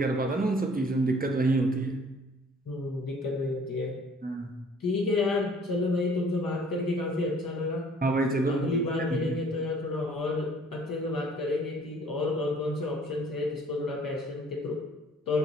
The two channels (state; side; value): normal; both; correlation 0.55